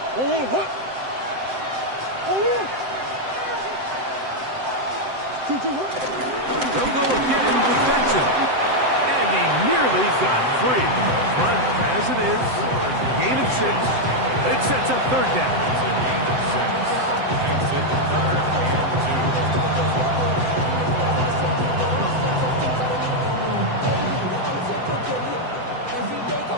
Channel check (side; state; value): left; late; 7.8 ms